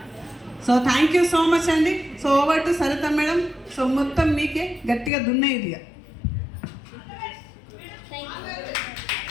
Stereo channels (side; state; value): right; drops out; at 5.1 s